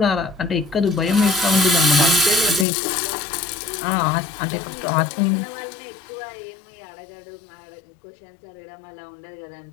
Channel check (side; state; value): right; drops out; at 2.7 s